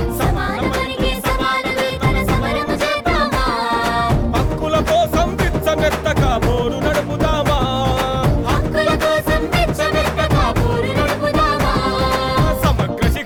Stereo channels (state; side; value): identical; both; correlation 1.00